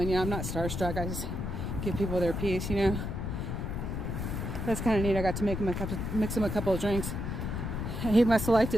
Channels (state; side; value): noise; left; rumble, 3 dB below the sound